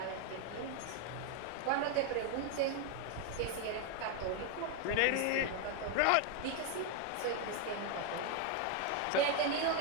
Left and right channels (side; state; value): both; different; correlation 0.01